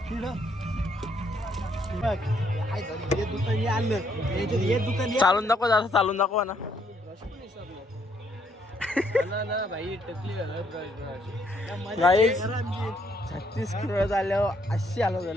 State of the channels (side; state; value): both; normal; correlation 0.71